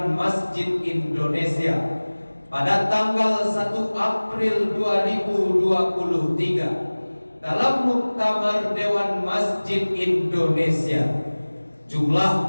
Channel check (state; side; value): inverted; both; correlation -1.00